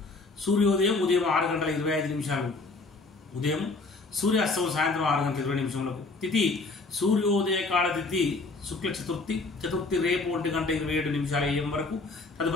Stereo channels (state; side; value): quieter; right; 3.6 dB